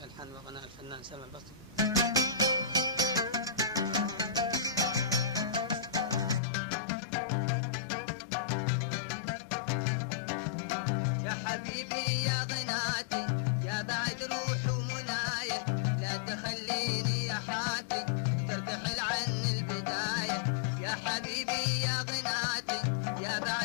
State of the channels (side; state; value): right; drops out; at 6.4 s